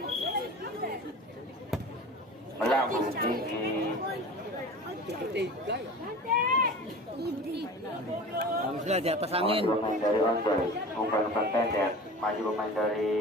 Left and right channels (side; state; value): both; normal; correlation 0.37